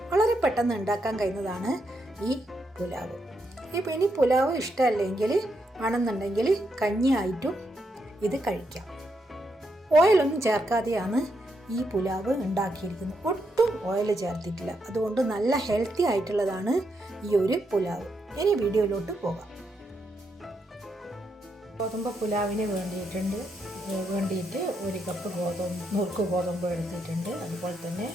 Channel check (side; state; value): both; normal; correlation 0.81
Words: വളരെ പെട്ടെന്ന് ഉണ്ടാക്കാൻ കഴിയുന്നതാണ് ഈ പുലാവ്. ഇനി പുലാവ് ഇഷ്ടമല്ലെങ്കിൽ ആണെന്നുണ്ടെങ്കിൽ കഞ്ഞിയായിട്ടും ഇത് കഴിക്കാം. ഓയിലൊന്നും ചേർക്കാതെയാണ് ഈ പുലാവ് ഉണ്ടാക്കിയിരിക്കുന്നത്. ഒട്ടും ഓയിൽ ചേർത്തിട്ടില്ല. അതുകൊണ്ട് നല്ല ഹെൽത്തി ആയിട്ടുള്ളതാണ് ഈ ഒരു പുലാവ്. ഇനി വീഡിയോയിലോട്ട് പോകാം. ഗോതമ്പ് പുലാവിന് വേണ്ടിയിട്ട് 1 കപ്പ് നുറുക്ക് ഗോതമ്പ് എടുത്തിട്ടുണ്ട്. അതുപോലെ തന്നെ